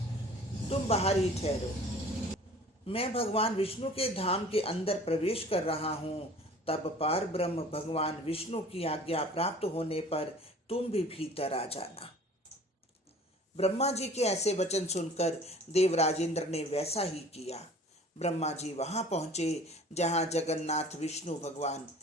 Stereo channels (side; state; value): both; normal; correlation 0.47